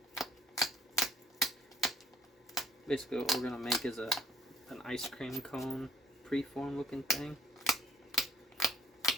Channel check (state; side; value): normal; both; correlation 0.61